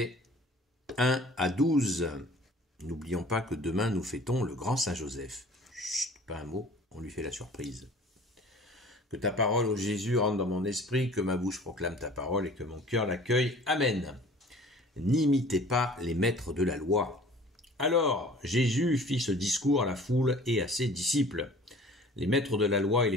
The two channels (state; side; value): normal; both; correlation 0.48